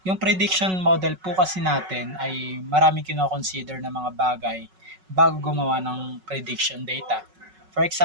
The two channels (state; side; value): late; left; 5.4 ms